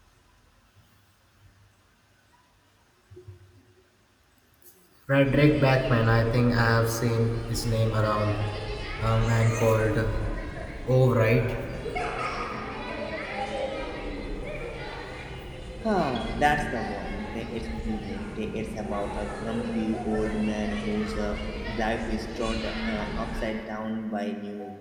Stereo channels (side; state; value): both; identical; correlation 1.00